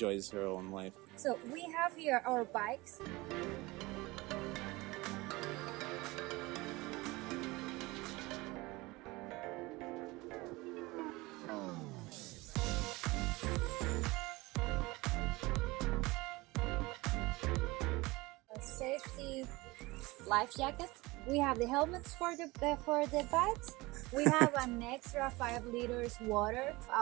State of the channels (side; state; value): left; quieter; 22.0 dB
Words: her own life. So we have here our bikes. A safety life jacket. We have the helmets for the bikes. We have an extra 5 liters water.